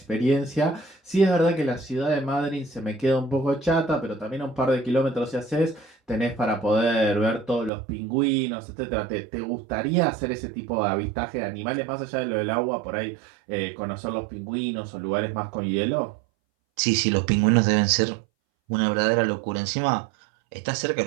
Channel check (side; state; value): left; drops out; at 7.7 s